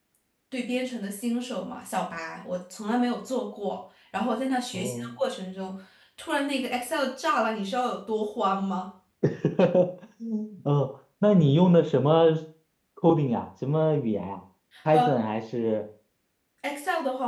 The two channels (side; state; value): both; identical; correlation 1.00